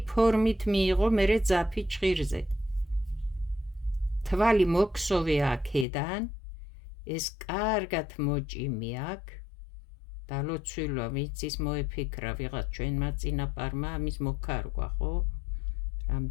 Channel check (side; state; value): right; drops out; at 5.9 s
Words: ფორმით მიიღო მერე ძაფი ჭხირზე. თვალი მოგსოვე აქედან, ეს კარგად მოჭიმი აქ. და ლოცვილა ვიცის მოეფიქრა ვიღაც ჩვენმა წინაპარმა ამის მოკარგვა, ხო?